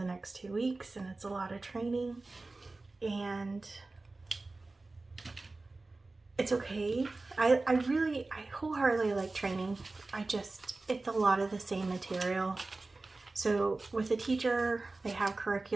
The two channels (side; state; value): left; quieter; 3.3 dB